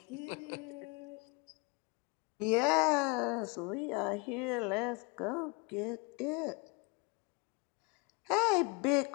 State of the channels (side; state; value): right; quieter; 29.7 dB